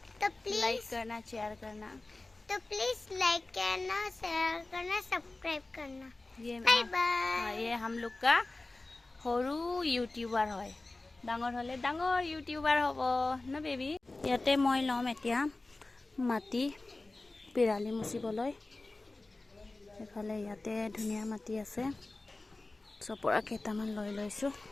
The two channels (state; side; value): quieter; right; 3.1 dB